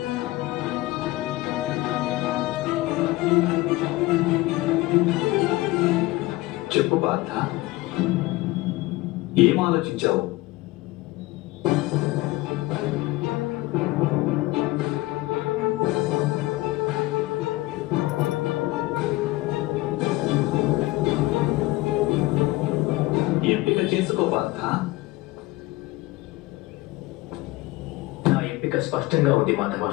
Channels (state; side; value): quieter; right; 19.6 dB